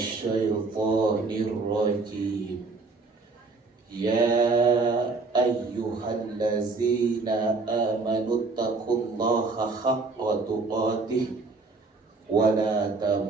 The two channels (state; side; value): quieter; left; 3.9 dB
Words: syaithanir rajim. Ya ayyuhallazina amanu taqullaha haqqa tuqatih wa la